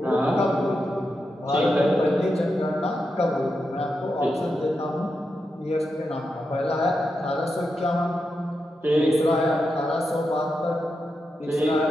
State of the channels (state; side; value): normal; both; correlation 0.87